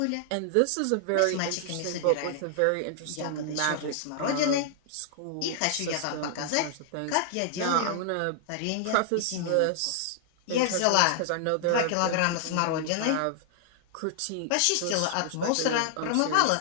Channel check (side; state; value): both; different; correlation -0.01